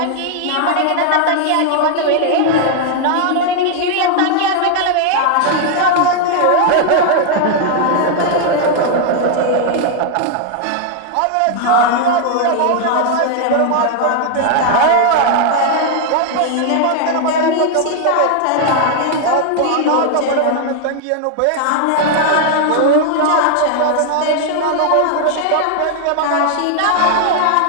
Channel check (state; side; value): different; both; correlation 0.00